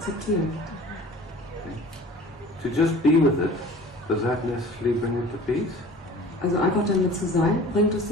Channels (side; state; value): both; normal; correlation 0.44